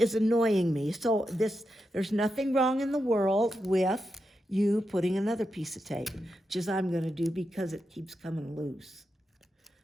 annoying me, so there's nothing wrong in the world with you putting another piece of tape, which is I'm gonna do because it keeps coming loose.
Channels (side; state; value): both; normal; correlation 0.87